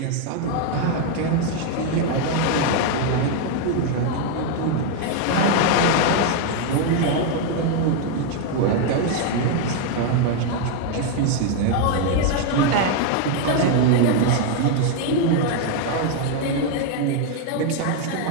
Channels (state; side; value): different; both; correlation 0.00